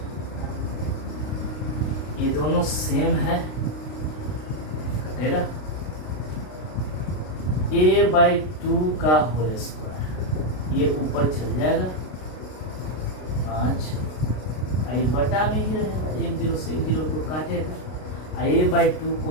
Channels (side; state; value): right; late; 33 ms